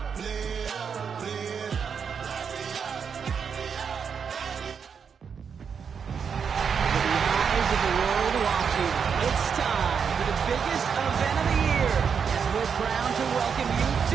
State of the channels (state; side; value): quieter; left; 6.6 dB